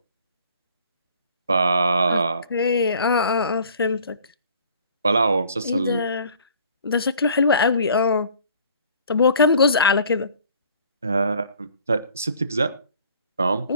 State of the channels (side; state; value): both; inverted; correlation -0.54